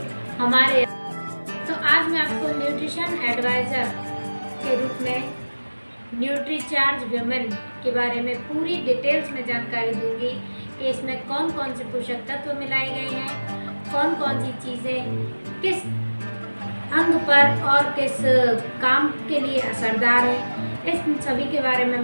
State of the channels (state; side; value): inverted; both; correlation -1.00